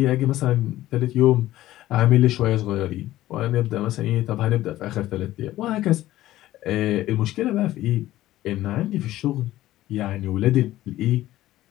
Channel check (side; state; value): right; quieter; 15.0 dB